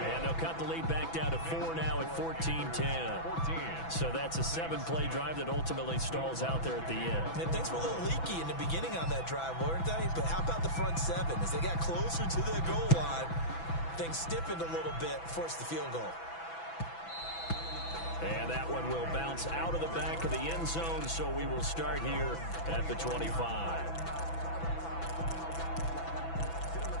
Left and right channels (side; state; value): right; late; 6.0 ms